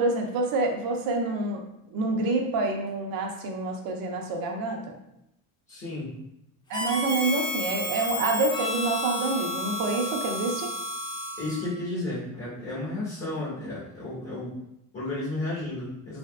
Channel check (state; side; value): normal; both; correlation 0.01